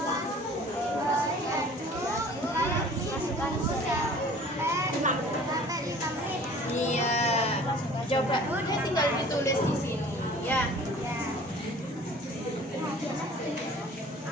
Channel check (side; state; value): both; normal; correlation 0.48